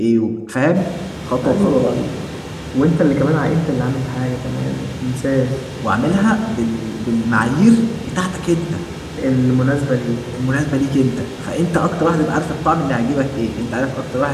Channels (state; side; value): identical; both; correlation 1.00